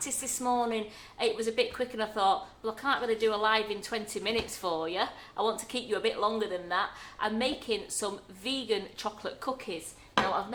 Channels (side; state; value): both; identical; correlation 1.00